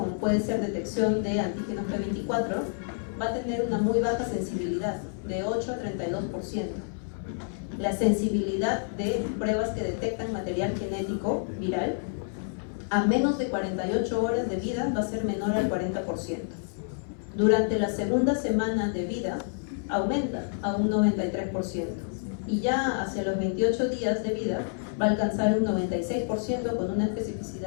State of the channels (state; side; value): silent; right; 59 dB below the other